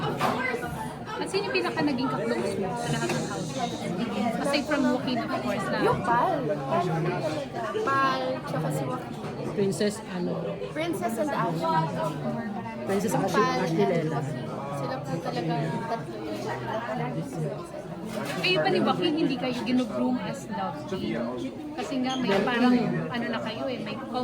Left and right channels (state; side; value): identical; both; correlation 1.00